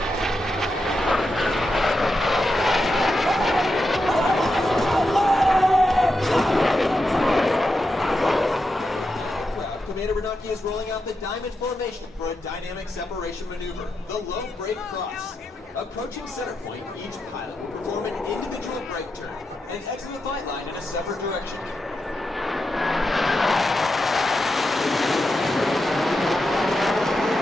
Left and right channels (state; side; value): normal; both; correlation 0.87